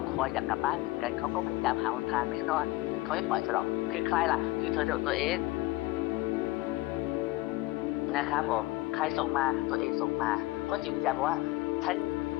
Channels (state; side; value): quieter; right; 19.2 dB